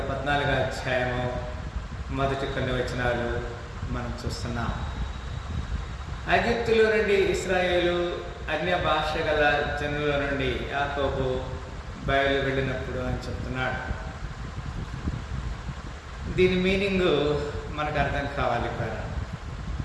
అధ్యాయము మొదటి కొన్ని వచనాలు మనం చూస్తున్నాం. ఐగుప్తులో నుండి ఇశ్రాయేలు అన్య భాష గల జనుల నుండి యాకోబు బయలు వెళ్ళినప్పుడు అని చెప్తున్నాడు. దీని మీనింగ్ మనకు అర్థం కావాలి కదా.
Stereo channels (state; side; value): identical; both; correlation 1.00